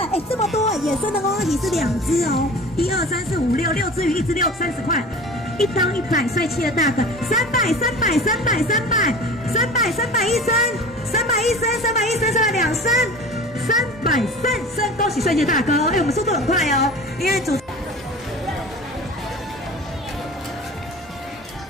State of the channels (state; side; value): normal; both; correlation 0.38